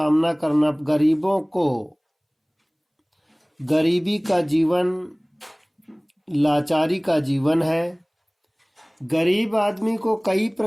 करना, गरीबों को गरीबी का जीवन लाचारी का जीवन है। गरीब आदमी को कई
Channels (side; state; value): both; identical; correlation 1.00